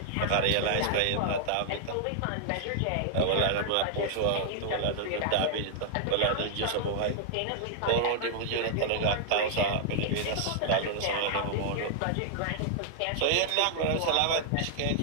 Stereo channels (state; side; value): different; both; correlation -0.01